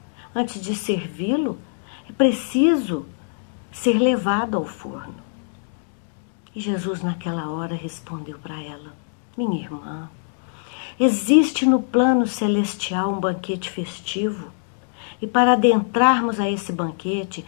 Antes de servi-lo, é preciso ser levado ao forno. E Jesus, naquela hora, respondeu para ela: Minha irmã, existe no plano celestial um banquete festivo, e para adentrarmos a esse banquete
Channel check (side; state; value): right; silent; digital silence